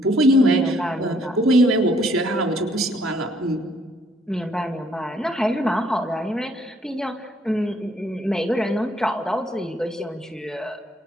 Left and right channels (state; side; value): normal; both; correlation 0.65